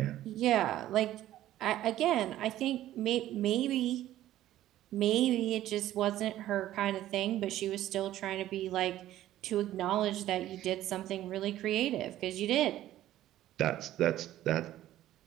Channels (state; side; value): quieter; left; 13.6 dB